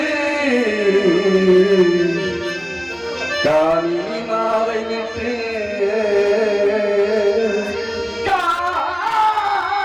காமினி மாலை விட்டு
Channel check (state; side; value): identical; both; correlation 1.00